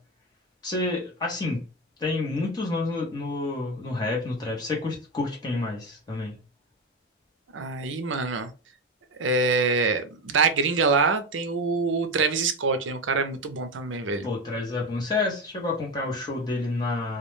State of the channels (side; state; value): both; normal; correlation 0.18